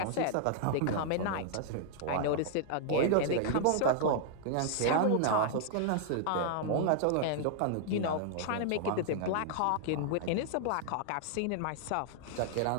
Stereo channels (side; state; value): both; different; correlation -0.01